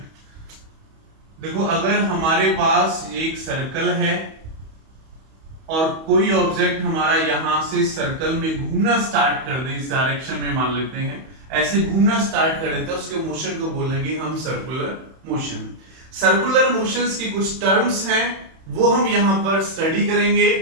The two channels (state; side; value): late; left; 31 ms